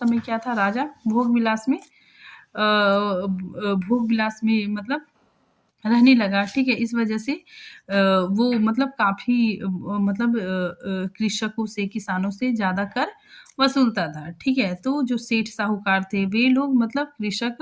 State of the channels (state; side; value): identical; both; correlation 1.00